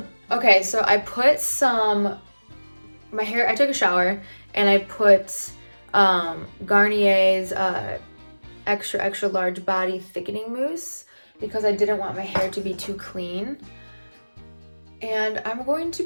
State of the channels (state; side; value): inverted; both; correlation -1.00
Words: Okay, so I put my hair, I took a shower and I put Garnier's extra large body thickening mousse because I didn't want my hair to be too clean. And I'm going to